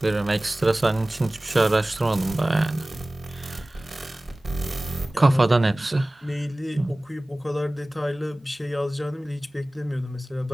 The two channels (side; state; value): both; normal; correlation 0.98